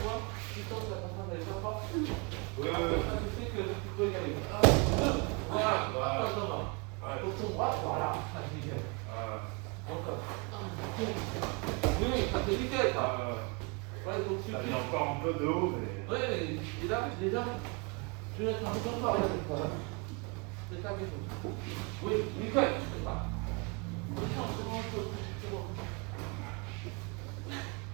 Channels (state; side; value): quieter; left; 30.7 dB